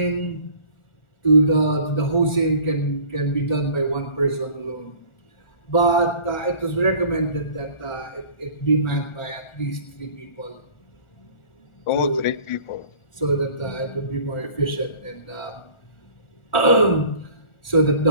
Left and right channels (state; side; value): late; right; 1.4 ms